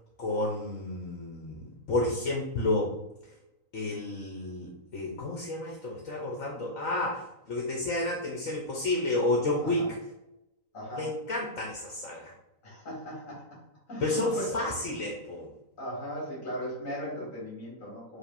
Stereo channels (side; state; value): right; late; 3.9 ms